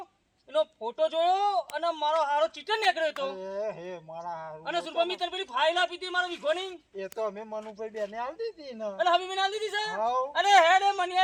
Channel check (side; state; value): both; identical; correlation 1.00